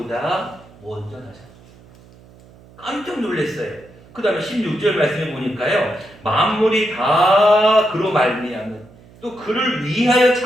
먼저 나셨어요. 깜짝 놀랐어요. 그 다음에 16절 말씀에 보니까요. 만물이 다 그로 말미암은 또 그를 위하여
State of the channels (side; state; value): right; noise; hum, 25 dB below the sound